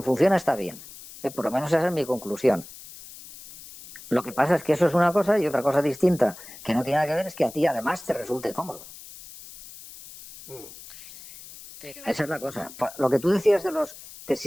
funciona está bien. Por lo menos esa es mi conclusión. Lo que pasa es que eso es una cosa y otra cosa distinta que no tiene nada que ver es que a ti además te resulte cómodo. Pero... Esa es la cosa. Lo que tú decías de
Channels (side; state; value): left; noise; hiss, 17 dB below the sound